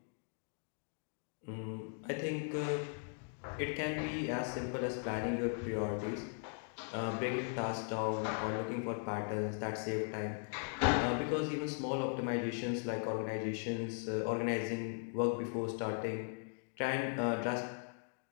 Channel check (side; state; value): right; silent; 52 dB below the other